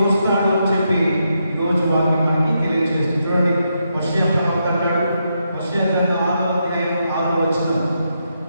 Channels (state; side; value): inverted; both; correlation -0.82